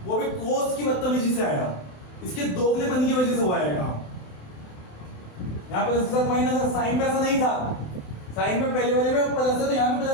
वो भी कोस की बदतमीजी से आया, इसके दोगलेपन की वजह से हुआ है काम। यहाँ प्लस के साथ माइनस है, साइन में ऐसा नहीं था। साइन में पहले वाले में प्लस है तो यहाँ पे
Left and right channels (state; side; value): late; right; 27 ms